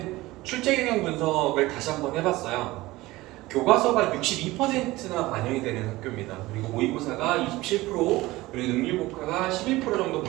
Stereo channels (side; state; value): left; quieter; 19.0 dB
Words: 출제 경향 분석을 다시 한번 해봤어요. 교과서가 62%나 반영이 되는 학교입니다. 그리고 모의고사가 27%, 그리고 능률국가가 11% 정도